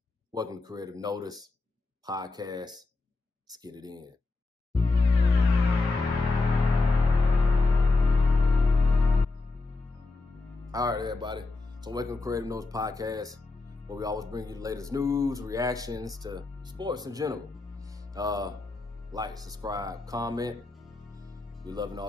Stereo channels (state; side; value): quieter; right; 3.5 dB